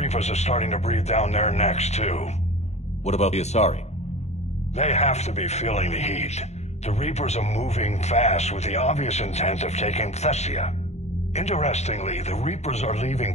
are starting to breathe down their necks, too. What about the Asari? They have to be feeling the heat. The Reapers are moving fast with the obvious intent of taking Thessia. Interestingly, the Reapers are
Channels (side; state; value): right; late; 0.32 ms